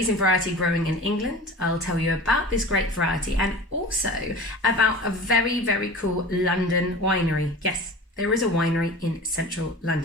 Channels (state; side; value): normal; both; correlation 0.36